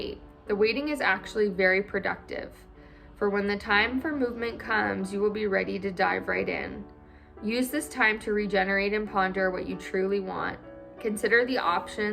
The waiting is actually very productive. For when the time for movement comes, you will be ready to dive right in. Use this time to regenerate and ponder what you truly want. Consider the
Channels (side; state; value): both; identical; correlation 1.00